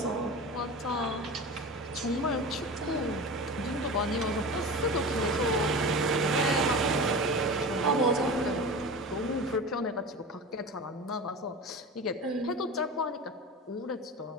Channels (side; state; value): both; normal; correlation 0.30